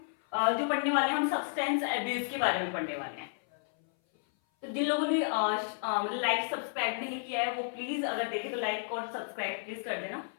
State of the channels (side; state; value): right; silent; 56 dB below the other